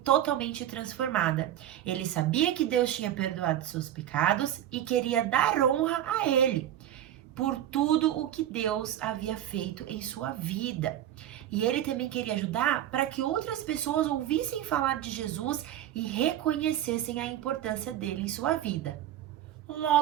totalmente transformada. Ele sabia que Deus tinha perdoado seus pecados e queria dar honra a ele. por tudo o que Deus havia feito em sua vida. E ele também queria ajudar para que outras pessoas ouvissem falar de Jesus e reconhecessem a importância dele em sua vida.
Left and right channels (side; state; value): left; quieter; 11.7 dB